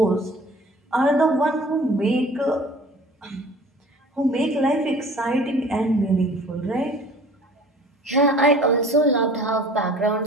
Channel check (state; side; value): normal; both; correlation 0.47